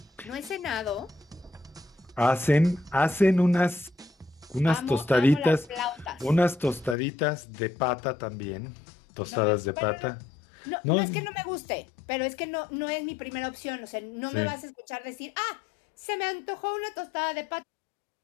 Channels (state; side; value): drops out; right; at 7.0 s